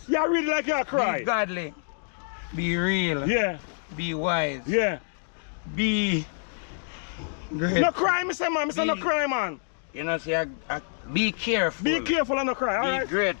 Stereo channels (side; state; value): right; silent; digital silence